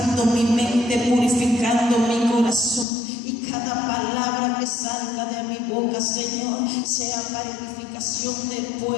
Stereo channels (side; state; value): right; drops out; at 2.9 s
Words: mi mente, purificando mi corazón. Y cada palabra que salga de mi boca, Señor, sea para edificación del